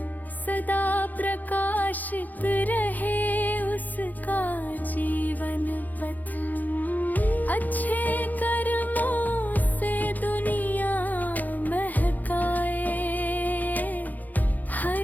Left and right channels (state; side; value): late; right; 0.082 ms